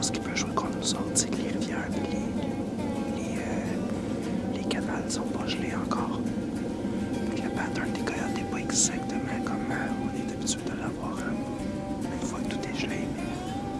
qui peut jouer contre nous autres, c'est que les rivières et les canals sont pas gelés encore. Le pattern des coyotes n'est pas exactement comme on est habitué de l'avoir une fois que tout est gelé, mais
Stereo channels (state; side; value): identical; both; correlation 1.00